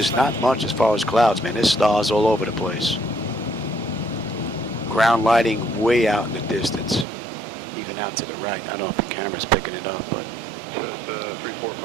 not much as far as clouds, man. There's stars all over the place. Ground lighting way out in the distance. Even out to the right. I don't know if the camera's picking it up, but...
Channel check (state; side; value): drops out; left; at 7.1 s